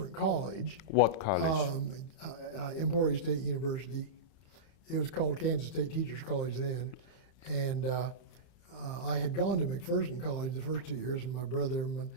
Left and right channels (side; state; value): right; late; 30 ms